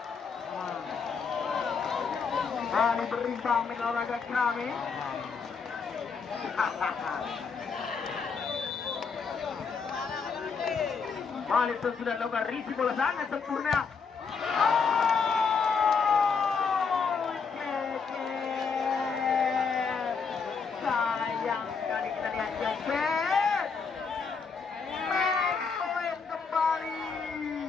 berimbang main olahraga kami. Balik itu sudah lakukan risi bola sangat sempurna. Sayang sekali kita lihat Ceket. Main poin kembali.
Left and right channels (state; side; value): quieter; right; 5.4 dB